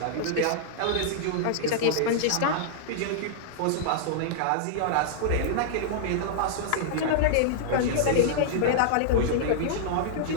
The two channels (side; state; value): both; different; correlation -0.02